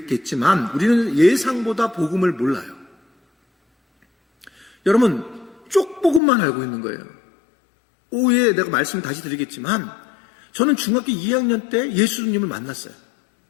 우리는 예상보다 복음을 몰라요. 여러분 쪽복음만 알고 있는 거예요. 오후에 내가 말씀 다시 드리겠지만 저는 중학교 2학년 때 예수님을 만났어요.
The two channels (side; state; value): right; drops out; at 6.2 s